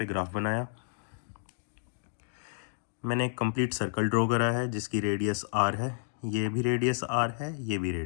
ग्राफ बनाया। मैंने एक कंप्लीट सर्कल ड्रॉ करा है जिसकी रेडियस आर है, ये भी रेडियस आर है, ये भी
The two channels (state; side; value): silent; right; digital silence